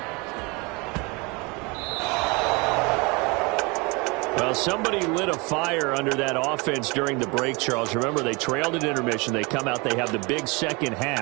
Well, somebody lit a fire under that offense during the break, Charles. Remember, they trailed at intermission. They come out, they have the big second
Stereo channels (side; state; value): left; quieter; 27.5 dB